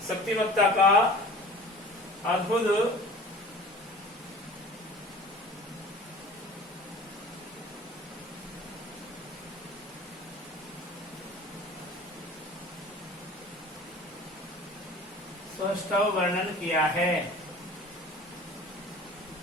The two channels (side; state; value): both; normal; correlation 0.43